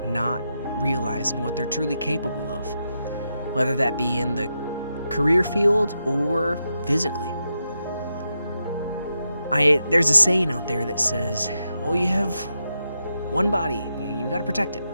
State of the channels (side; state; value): both; inverted; correlation -0.85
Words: not realizing what they're truly capable of, whether that be in the career field or physically. There's a saying out there that says, oh, you have one body, you gotta protect it.